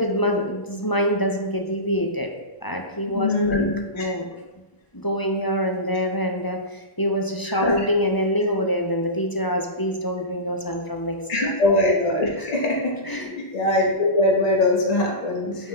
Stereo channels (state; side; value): late; right; 1.0 ms